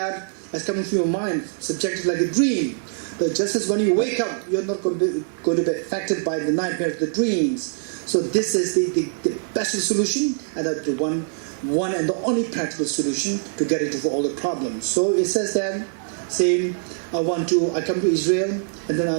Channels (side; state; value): left; silent; 63 dB below the other